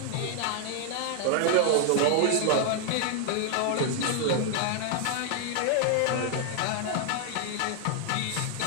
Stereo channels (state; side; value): different; both; correlation 0.00